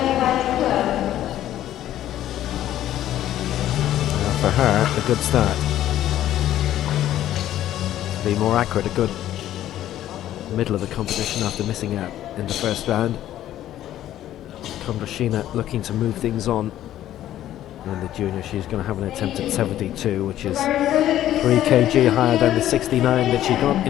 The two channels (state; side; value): quieter; right; 12.6 dB